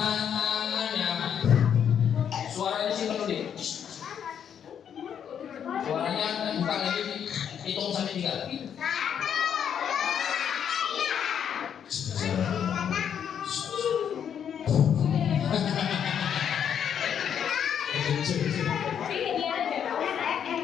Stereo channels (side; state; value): right; quieter; 8.5 dB